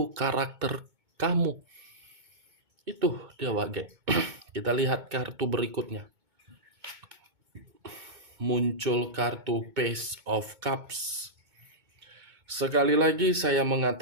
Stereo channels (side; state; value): left; late; 2.2 ms